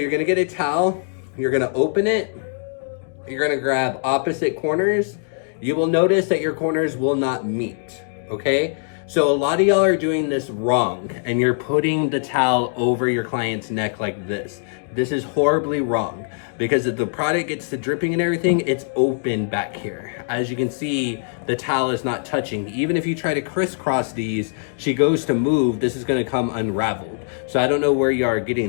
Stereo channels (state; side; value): silent; right; digital silence